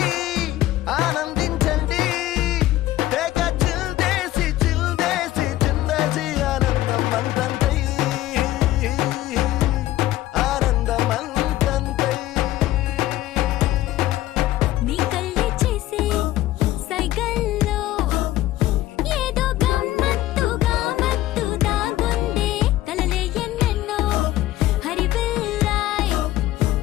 ఆనందించండి తెగ చిల్దేసి చిల్దేసి చిందేసి ఆనందం అంతంతై ఆనందం అంతంతై నీ కళ్ళే చేసే సైగల్లో ఏదో గమ్మత్తుగా మత్తు దాగుందే కలలే ఎన్నెన్నో హరివిల్లాయ్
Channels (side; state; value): right; quieter; 15.2 dB